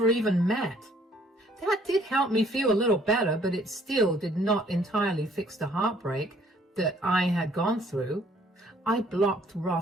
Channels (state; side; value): normal; both; correlation 0.61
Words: even met. That did help me feel a little better, but it still did not entirely fix the heartbreak that I had gone through. I blocked